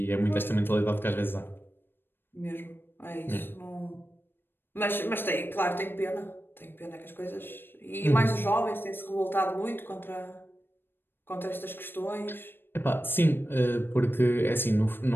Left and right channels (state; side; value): late; right; 0.099 ms